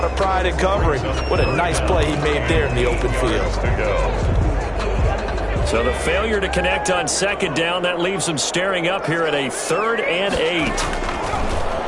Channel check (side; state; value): both; identical; correlation 1.00